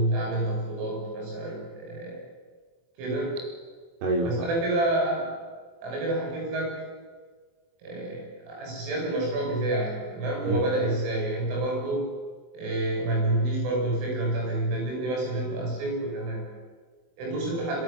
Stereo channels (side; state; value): left; late; 24 ms